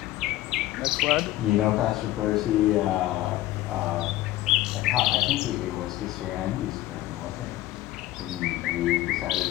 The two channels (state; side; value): quieter; right; 15.8 dB